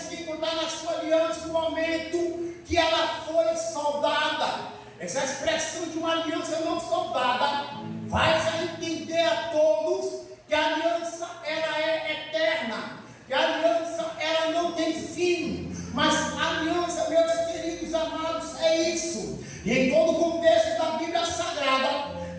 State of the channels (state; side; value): identical; both; correlation 1.00